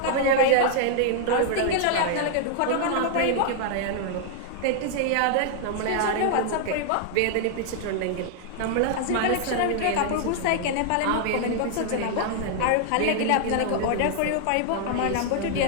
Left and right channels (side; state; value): both; different; correlation 0.00